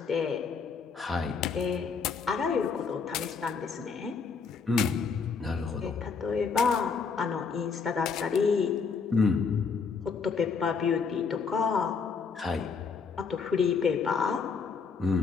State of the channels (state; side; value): quieter; right; 5.4 dB